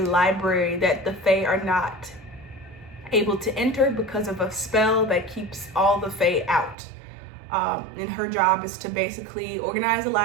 that the fae are not able to enter because of a spell that keeps all the fae out. And her job is to basically organize the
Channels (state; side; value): drops out; left; at 6.8 s